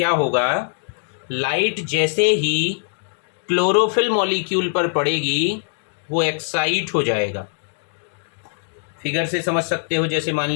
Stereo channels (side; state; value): right; silent; digital silence